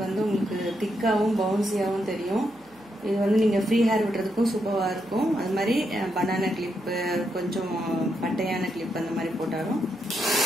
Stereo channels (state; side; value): noise; right; hum, 30 dB below the sound